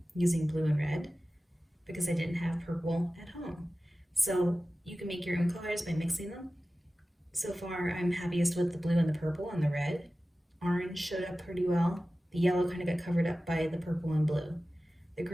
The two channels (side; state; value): both; normal; correlation 0.95